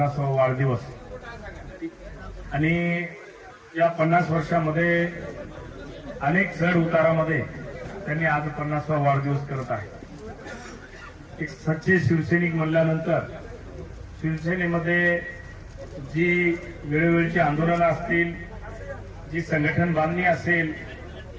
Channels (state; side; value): identical; both; correlation 1.00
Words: वाढदिवस आणि या 50 वर्षामध्ये अनेक चढ उतारामध्ये त्यांनी आज 50वा वाढदिवस करत आहे। एक सच्चे शिवसैनिक म्हणल्यानंतर शिवसेनेमध्ये जी वेळोवेळची आंदोलनं असतील, जी संघटन बांधणी असेल,